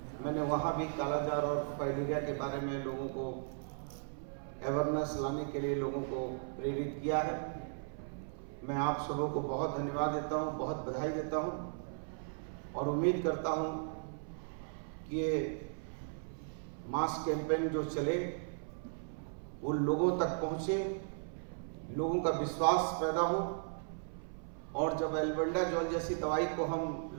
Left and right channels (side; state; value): left; silent; 53 dB below the other